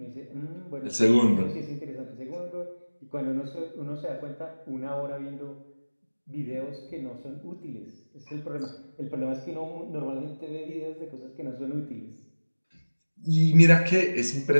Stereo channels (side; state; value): both; inverted; correlation -1.00